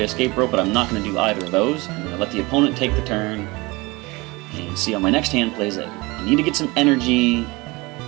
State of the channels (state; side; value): quieter; left; 23.9 dB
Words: Escape Rope, but I'm not going to do either of those. I'm going to let the opponent take the turn, and see how my next hand plays it. I need to get some energy